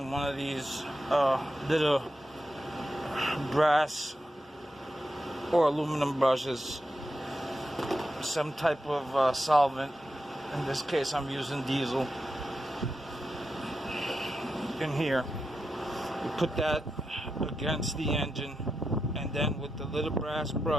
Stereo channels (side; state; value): both; normal; correlation 0.88